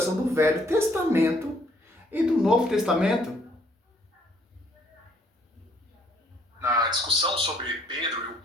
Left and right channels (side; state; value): both; normal; correlation 0.65